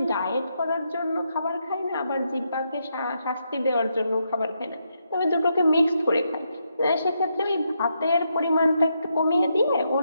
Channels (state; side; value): inverted; both; correlation -0.80